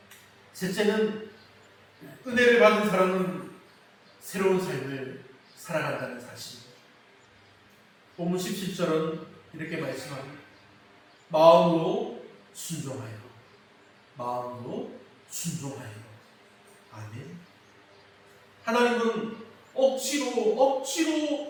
셋째는 은혜를 받은 사람은 새로운 삶을 살아간다는 사실입니다. 본문 17절은 이렇게 말씀합니다. 마음으로 순종하여, 마음으로 순종하여. 아멘. 하나님은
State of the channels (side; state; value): both; identical; correlation 1.00